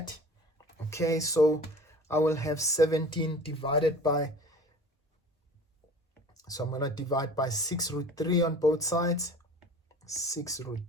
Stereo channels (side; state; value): both; normal; correlation 0.43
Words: Okay, so I will have 17 divided by, so I'm going to divide by 6 root 3 on both sides. 6 root